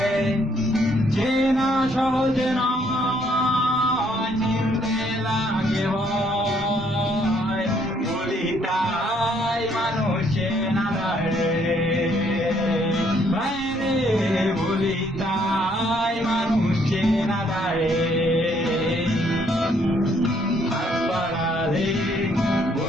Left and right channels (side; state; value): both; normal; correlation 0.67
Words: চেনা সহজ নয়, চিনতে লাগে ভয়। বলি তাই মানুষ চেনা যায়, বাইরে বলি তাই মানুষ চেনা যায়। হাত বাড়ালে